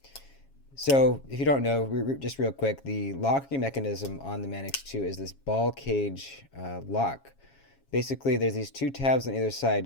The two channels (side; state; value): right; late; 7.3 ms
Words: So if you don't know, just real quick, the locking mechanism on the Manix 2 is this ball cage lock. Basically, there's these two tabs on either